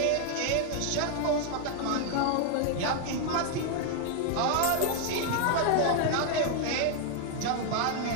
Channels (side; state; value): both; different; correlation 0.00